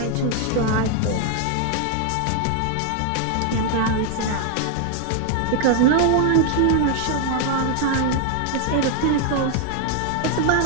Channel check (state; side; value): different; both; correlation 0.00